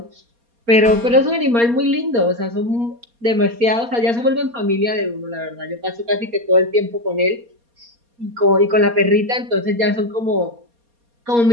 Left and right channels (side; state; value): left; late; 4.3 ms